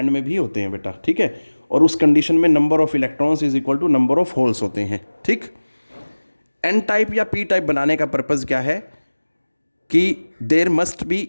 में भी होते हैं बेटा, ठीक है। और उस कंडीशन में number of electrons is equal to number of holes होते हैं, ठीक। एन टाइप या पी टाइप बनाने का पर्पज़ क्या है कि there must be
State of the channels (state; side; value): inverted; both; correlation -1.00